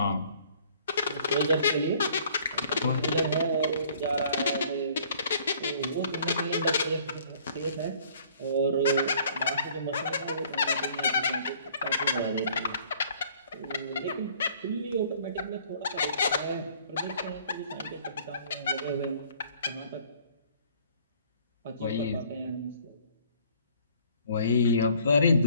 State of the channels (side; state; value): both; inverted; correlation -0.56